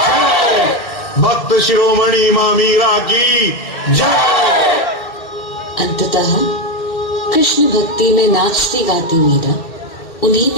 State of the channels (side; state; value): right; late; 2.7 ms